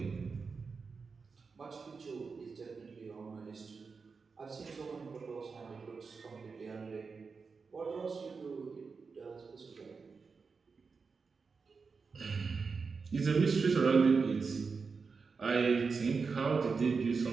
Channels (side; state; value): left; quieter; 4.9 dB